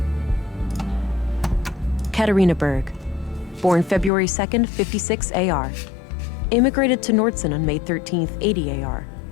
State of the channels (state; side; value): drops out; right; at 4.1 s